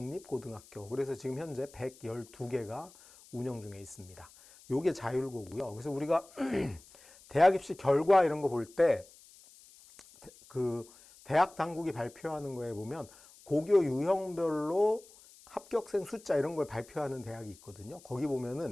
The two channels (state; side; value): noise; left; hiss, 23 dB below the sound